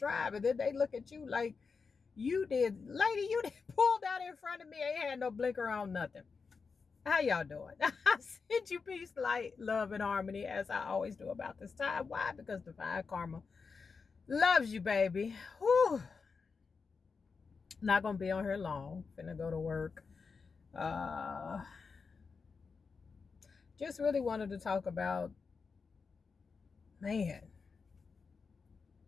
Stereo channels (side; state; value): right; quieter; 5.0 dB